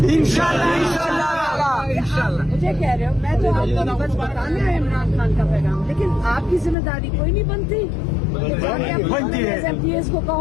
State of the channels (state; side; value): drops out; right; at 6.8 s